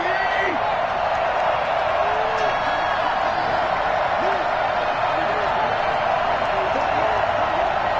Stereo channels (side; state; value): both; identical; correlation 1.00